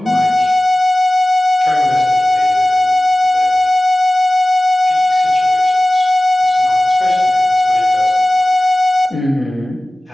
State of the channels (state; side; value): normal; both; correlation 0.97